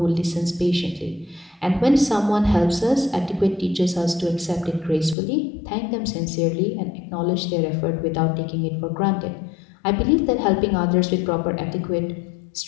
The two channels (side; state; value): right; drops out; at 5.2 s